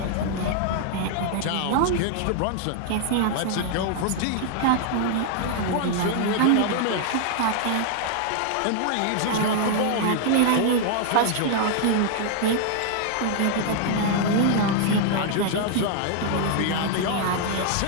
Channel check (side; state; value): both; different; correlation 0.00